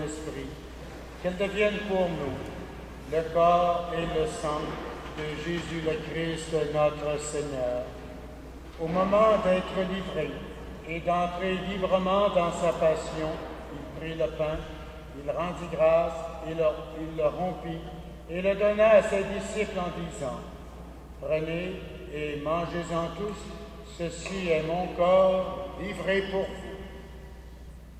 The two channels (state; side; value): identical; both; correlation 1.00